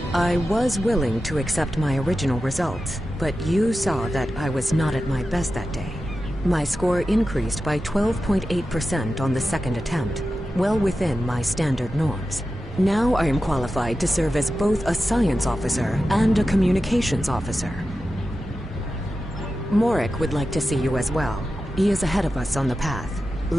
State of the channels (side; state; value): both; normal; correlation 0.92